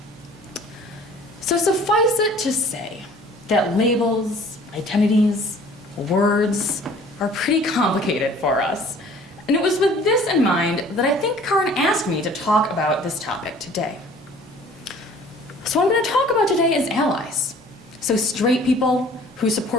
So suffice it to say that labels, identities, words are pretty complicated for us. And it was with this in mind that I think Kaelyn asked me to talk about this topic today. So what I'm going to talk about today is allies. So straight people who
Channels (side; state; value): both; normal; correlation 0.51